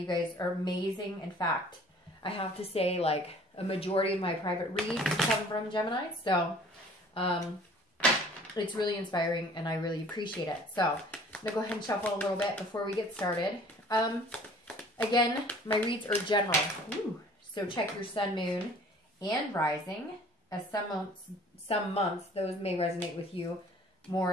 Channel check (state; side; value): normal; both; correlation 0.51